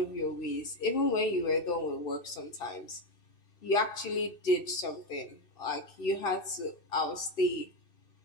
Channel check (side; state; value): right; late; 2.6 ms